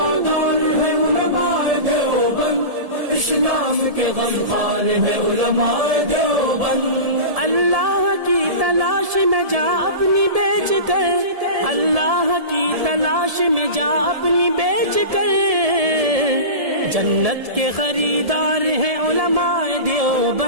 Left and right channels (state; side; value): late; left; 1.7 ms